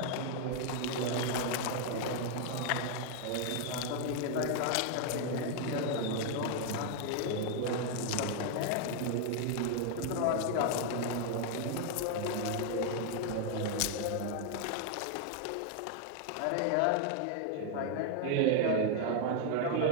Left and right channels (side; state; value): both; different; correlation 0.00